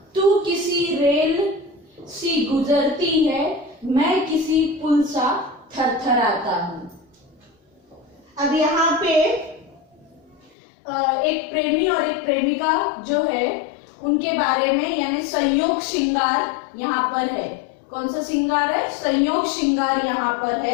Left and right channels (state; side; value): drops out; right; at 10.5 s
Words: तू किसी रेल सी सी गुजरती है, मैं किसी पुल सा थरथराता हूं। अब यहाँ पे एक प्रेमी और एक प्रेमिका जो है उनके बारे में, यानी संयोग श्रृंगार यहाँ पर है। कौन सा श्रृंगार है? संयोग श्रृंगार यहाँ पर